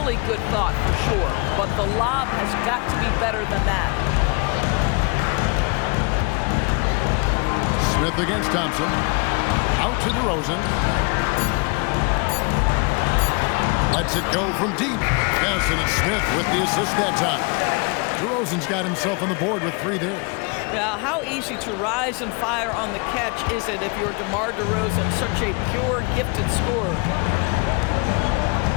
good thought for sure, but the lob has got to be better than that. Smith against Thompson. Out to DeRozan. Lets it go from deep. Yes, and it's Smith with the assist that time. DeRozan's got himself on the board with 3 there. Now, how easy to rise and fire on the catch is it if you're DeMar DeRozan, such a pure, gifted scorer?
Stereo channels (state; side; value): quieter; right; 31.3 dB